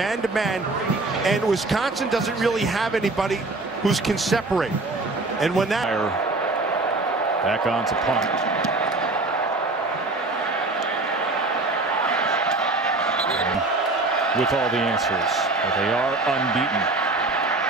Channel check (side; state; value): left; quieter; 3.2 dB